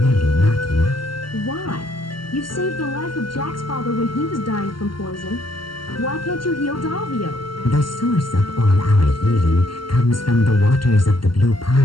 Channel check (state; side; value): late; right; 0.72 ms